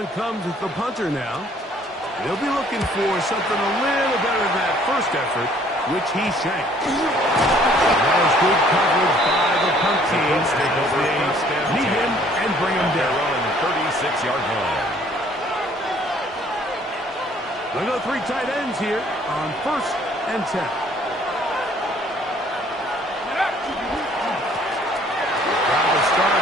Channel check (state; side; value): normal; both; correlation 0.59